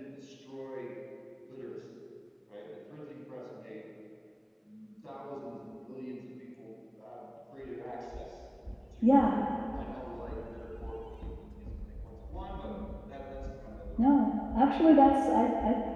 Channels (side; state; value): both; identical; correlation 1.00